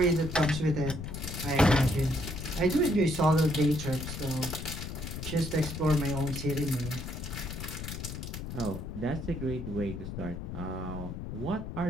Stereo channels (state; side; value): noise; left; rumble, 7 dB below the sound